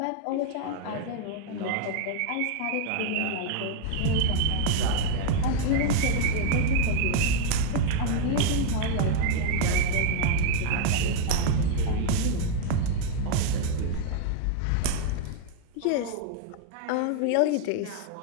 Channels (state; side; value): different; both; correlation 0.00